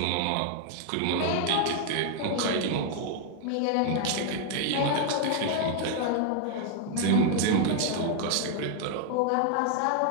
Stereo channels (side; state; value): both; different; correlation 0.00